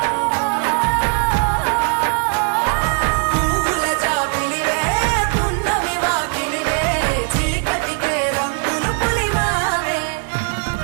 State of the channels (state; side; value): quieter; left; 39.3 dB